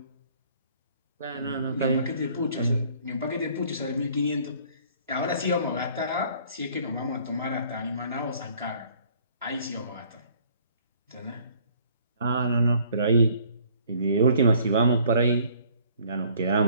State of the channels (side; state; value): both; inverted; correlation -0.58